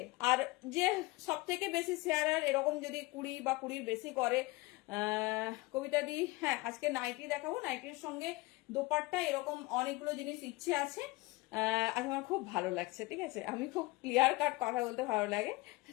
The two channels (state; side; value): quieter; right; 22.4 dB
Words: আর যে সব থেকে বেশি শেয়ারার এরকম যদি 20 বা 20 বেশি করে, কবিতা দি, হ্যাঁ আজকে নাইটি দেখাবো, নাইটির সঙ্গে দোপাট্টা, এরকম অনেকগুলো জিনিস ইচ্ছে আছে। আজ আমার খুব ভালো লাগছে, ঠিক আছে, আমি খুব ক্লিয়ার কাট কথা বলতে ভালো লাগে,